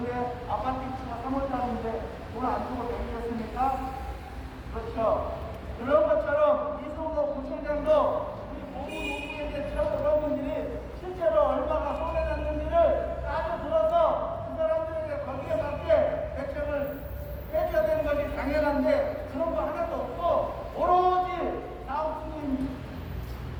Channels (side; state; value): both; identical; correlation 1.00